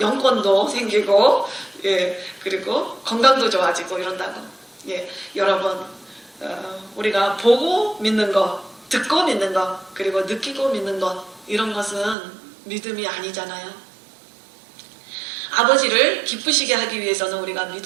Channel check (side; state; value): left; drops out; at 12.2 s